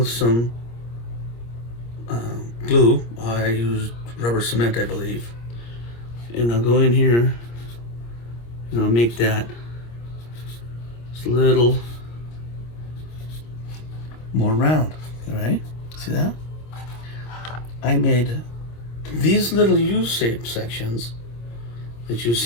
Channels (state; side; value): late; right; 26 ms